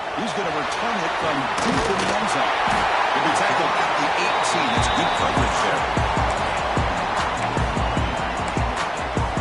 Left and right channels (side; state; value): both; identical; correlation 1.00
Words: He's going to return it from deep in the end zone. He'll be tackled at the 18. It's good coverage there.